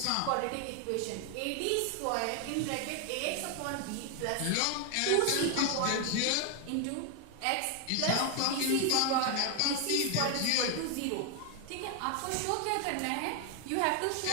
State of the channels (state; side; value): different; both; correlation 0.01